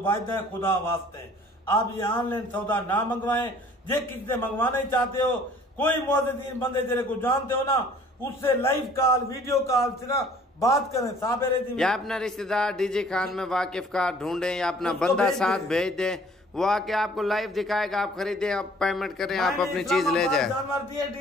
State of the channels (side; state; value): both; normal; correlation 0.54